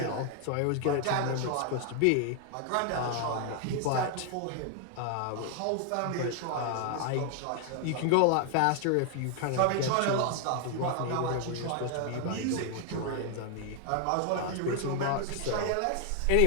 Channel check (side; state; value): both; different; correlation 0.00